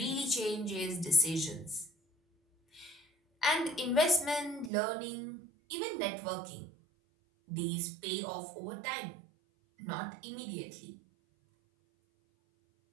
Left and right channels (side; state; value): left; drops out; at 4.7 s